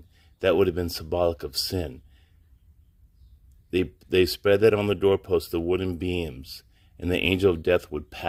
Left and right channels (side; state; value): both; identical; correlation 1.00